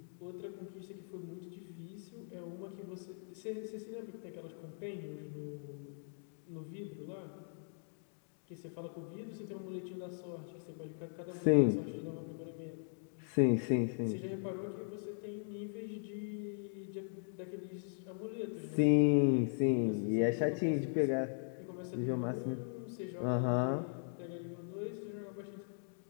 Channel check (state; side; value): silent; right; digital silence